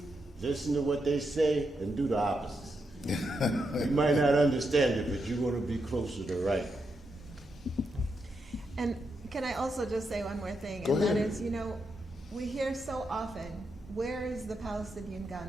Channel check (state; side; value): normal; both; correlation 0.83